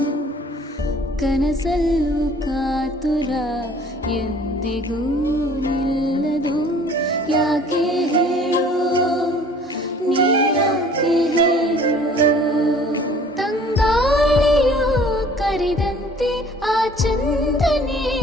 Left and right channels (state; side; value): normal; both; correlation 0.52